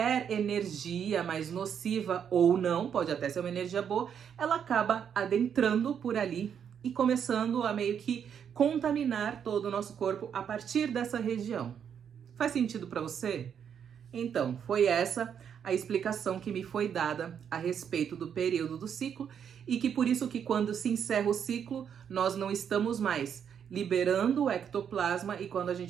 energia mais nociva ou não, pode até ser uma energia boa, ela acaba adentrando por ali e começando a meio que contaminar todo o nosso corpo a partir dessa região. Faz sentido para você? Então, foi essa a explicação que me foi dada a respeito do período do ciclo e que por isso que quando se encerra o ciclo, nós não estamos mais liberando o ectoplasma e quando a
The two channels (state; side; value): quieter; left; 8.0 dB